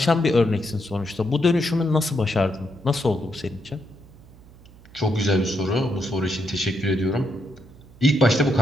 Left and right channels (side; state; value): right; noise; hum, 23 dB below the sound